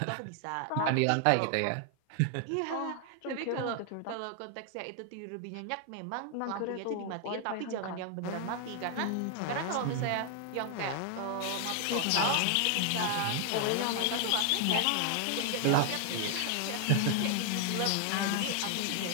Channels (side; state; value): both; different; correlation 0.00